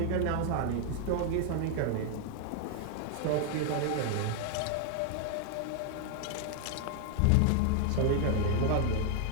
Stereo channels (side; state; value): both; different; correlation 0.00